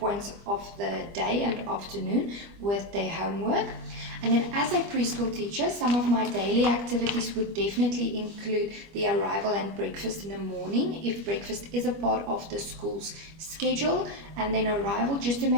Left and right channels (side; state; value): left; late; 25 ms